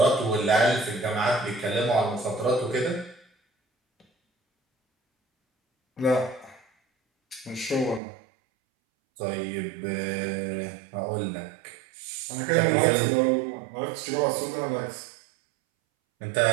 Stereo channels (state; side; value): drops out; left; at 8.0 s